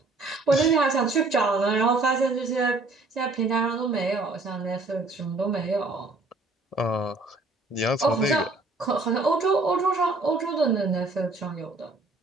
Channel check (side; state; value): left; quieter; 3.2 dB